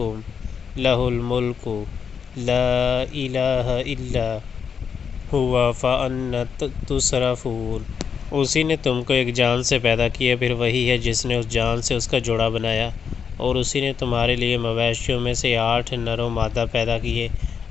لہ الملک لا الہ الا ہوا فأنا تصرفون۔ اسی نے تم کو ایک جان سے پیدا کیا، پھر وہی ہے جس نے اس جان سے اس کا جوڑا بنایا، اور اسی نے تمہارے لیے مویشیوں میں سے 8 نر و مادہ پیدا کیے۔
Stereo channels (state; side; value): quieter; right; 6.7 dB